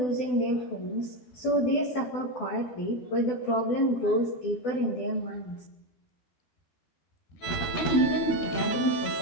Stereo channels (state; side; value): late; right; 12 ms